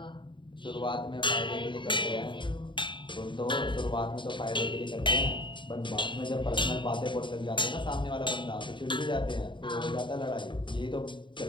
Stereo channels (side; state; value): right; late; 0.23 ms